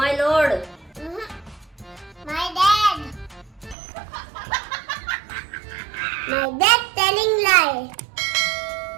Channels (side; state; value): left; drops out; at 3.8 s